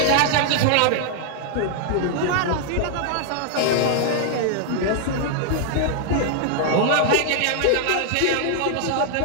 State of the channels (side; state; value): both; different; correlation -0.01